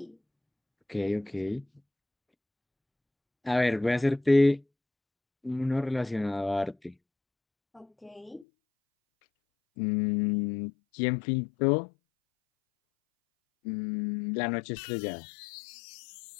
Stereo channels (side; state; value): right; drops out; at 8.5 s